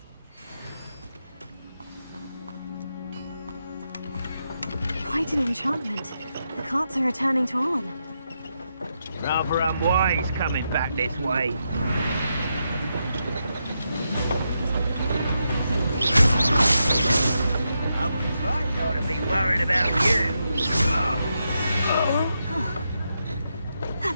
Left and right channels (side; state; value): both; inverted; correlation -0.84